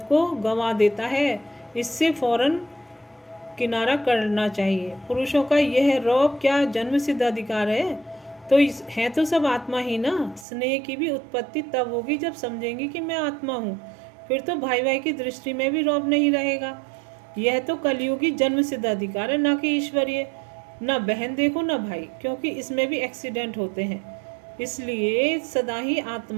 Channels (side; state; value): left; drops out; at 10.5 s